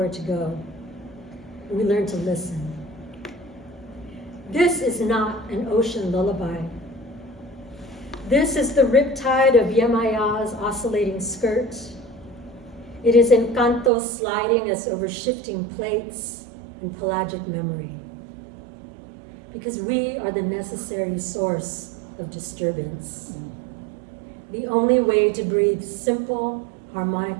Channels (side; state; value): left; drops out; at 13.9 s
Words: to go. We learn to listen. This is not an ocean lullaby. This is the riptide of Yemaya's oscillating skirt. It is Encanto sliding us over shifting plates and pelagic memory. Because we are the necessary source of disturbance. The only way to breathe simple,